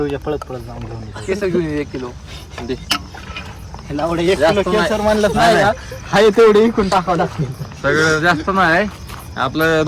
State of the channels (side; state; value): both; identical; correlation 1.00